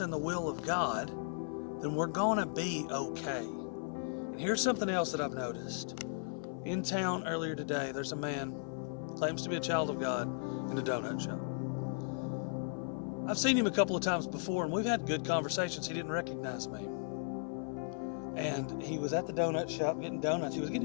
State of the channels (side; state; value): right; silent; 54 dB below the other